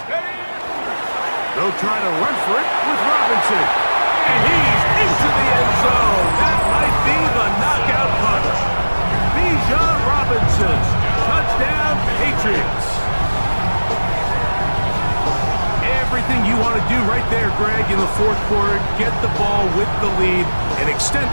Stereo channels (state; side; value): inverted; both; correlation -1.00